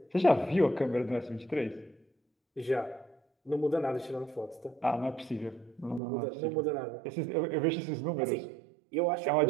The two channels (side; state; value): left; drops out; at 6.0 s